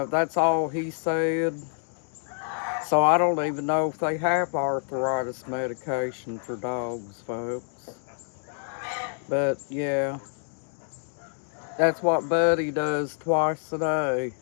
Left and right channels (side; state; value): right; silent; digital silence